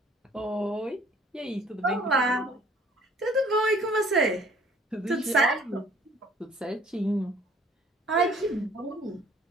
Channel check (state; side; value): normal; both; correlation 0.56